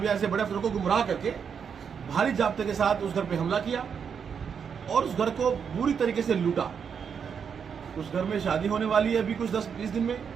या ऐसे बड़े अफसरों को गुमराह करके भारी जाब्ते के साथ उस घर पे हमला किया और उस घर को बुरी तरीके से लूटा। उस घर में शादी होने वाली है अभी कुछ 10-20 दिन में,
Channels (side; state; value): left; quieter; 6.9 dB